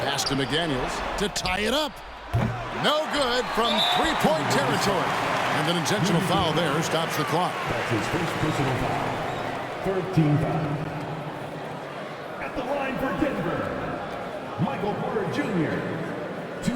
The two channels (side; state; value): both; identical; correlation 1.00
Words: Pass to McDaniels to tie it up. No good from 3-point territory. And an intentional foul there stops the clock. That's his first personal foul. Third team foul. At the line for Denver, Michael Porter Jr.